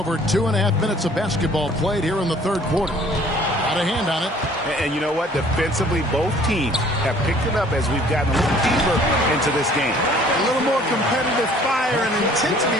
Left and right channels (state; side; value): normal; both; correlation 0.55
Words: 2.5 minutes of basketball played here in the third quarter. Got a hand on it. And you know what? Defensively, both teams have picked it up as we've gotten a little deeper into this game. A little more competitive fire and intensity